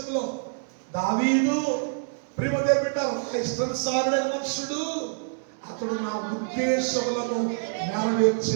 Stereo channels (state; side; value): silent; left; 61 dB below the other